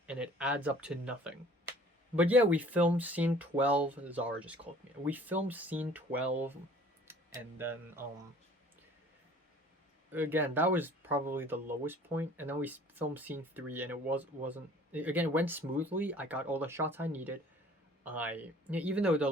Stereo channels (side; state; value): both; normal; correlation 0.51